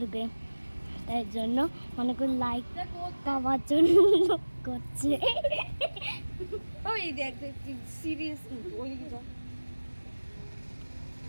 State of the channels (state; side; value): inverted; both; correlation -1.00